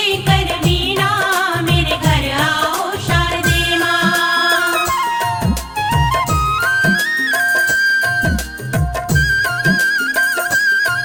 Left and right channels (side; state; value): both; identical; correlation 1.00